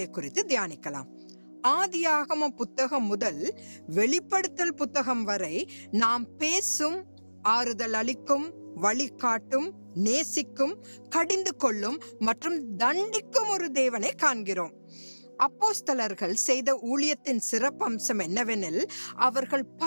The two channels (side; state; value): both; inverted; correlation -1.00